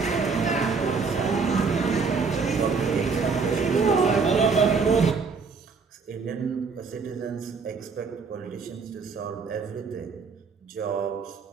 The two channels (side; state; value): left; quieter; 5.0 dB